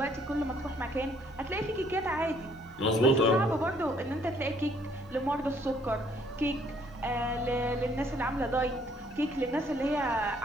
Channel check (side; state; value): both; normal; correlation 0.64